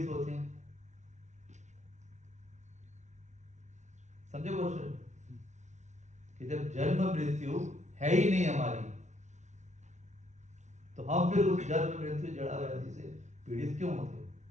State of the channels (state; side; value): late; left; 0.34 ms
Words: होते हैं। समझे क्वेश्चन? कि जब जन्म मृत्यु है ही नहीं हमारी, तो हम फिर उस जन्म मृत्यु जड़ा व्याधि से पीड़ित क्यों होते?